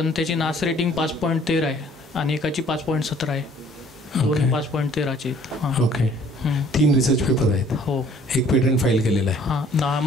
त्याची नास रेटिंग 5.13 आहे आणि एकाची 5.17 आहे. दोन 5.13चे. ओके. 3 रिसर्च पेपर आहेत. हो. एक पेटंट फाईल केलेलं आहे. हां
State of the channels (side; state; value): both; normal; correlation 0.57